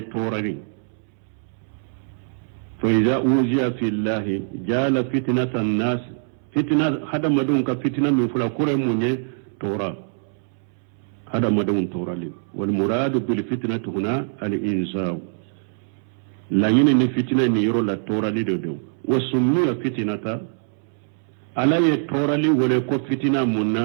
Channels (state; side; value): silent; left; 63 dB below the other